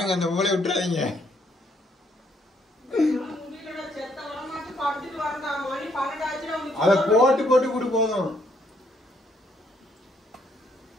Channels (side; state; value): both; normal; correlation 0.70